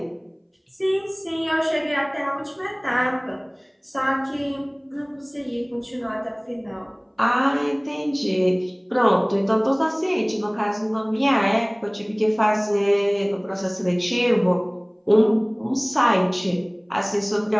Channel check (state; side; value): identical; both; correlation 1.00